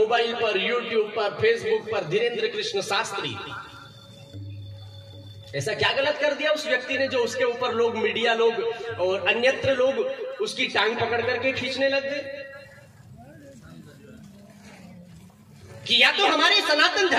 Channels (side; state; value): both; identical; correlation 1.00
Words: पर, यूट्यूब पर, फेसबुक पर धीरेन्द्र कृष्ण शास्त्री। ऐसा क्या गलत कर दिया उस व्यक्ति ने जो उसके ऊपर लोग, मीडिया लोग और अन्यत्र लोग उसकी टांग पकड़ करके खींचने लग गए? किया तो हमारे सनातन